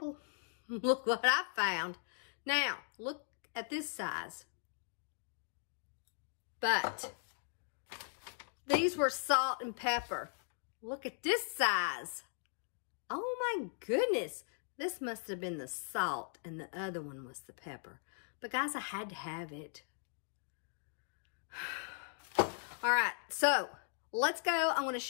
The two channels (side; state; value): right; silent; digital silence